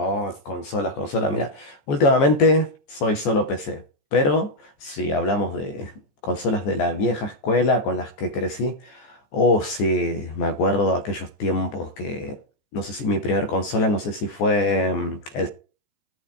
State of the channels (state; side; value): late; right; 14 ms